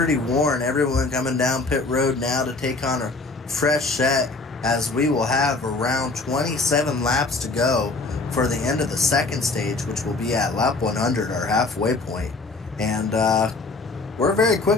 worn. Everyone coming down pit road now to take on a fresh set as we will have around 27 laps to go for the end of the second stage, which will be at lap 100, our halfway point. And we're very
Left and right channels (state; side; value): quieter; right; 3.5 dB